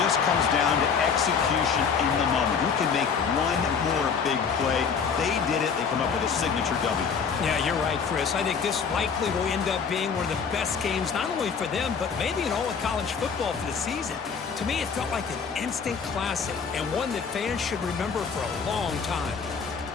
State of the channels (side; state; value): right; quieter; 6.1 dB